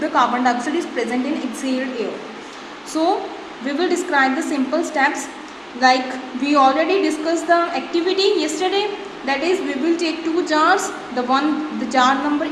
carbon dioxide is present in exhaled air. So we will describe the simple steps, like we already discussed the activity yesterday. That is, we will take two jars, the jar number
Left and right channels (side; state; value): both; identical; correlation 1.00